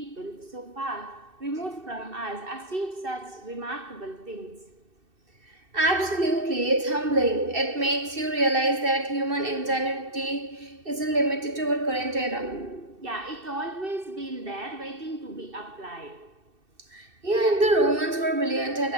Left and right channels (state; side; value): late; left; 2.6 ms